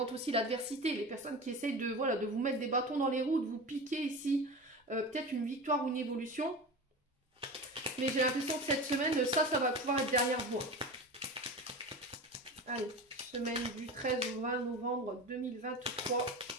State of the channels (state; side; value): normal; both; correlation 0.29